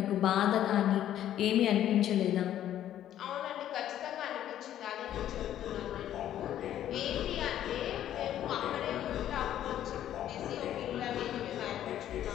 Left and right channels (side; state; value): right; quieter; 11.5 dB